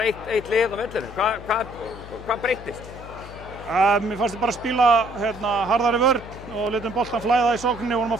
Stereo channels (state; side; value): noise; left; hum, 15 dB below the sound